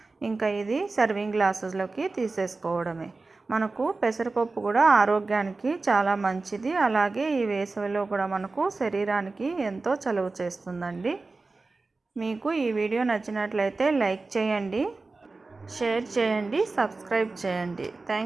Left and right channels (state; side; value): quieter; left; 3.7 dB